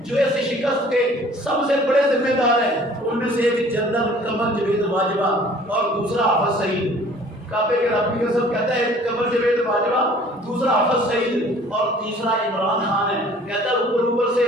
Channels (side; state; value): both; normal; correlation 0.52